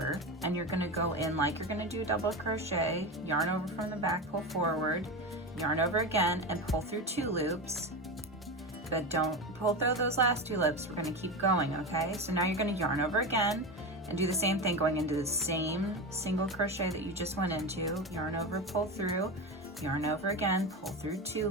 and you're going to go in like you're going to do a double crochet, yarn over from the back, pull forward, yarn over again, and pull through 2 loops. But don't pull through those last 2 loops. We're going to keep going, okay? So now you're going to yarn over again and do the same thing, going into the same single crochet that you just went into. Yarn over, pull through, yarn over again, pull through 2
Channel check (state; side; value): normal; both; correlation 0.21